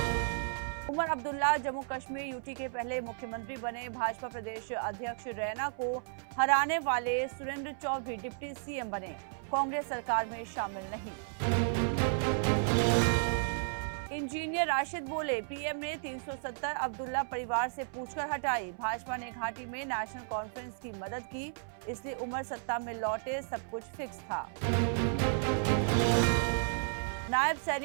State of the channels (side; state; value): left; silent; 55 dB below the other